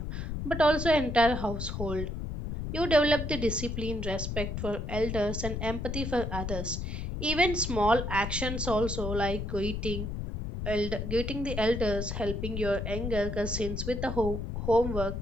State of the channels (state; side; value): noise; left; rumble, 4 dB below the sound